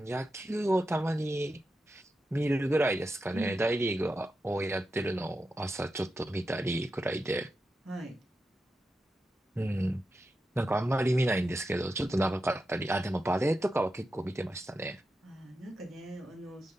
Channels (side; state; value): both; normal; correlation 0.89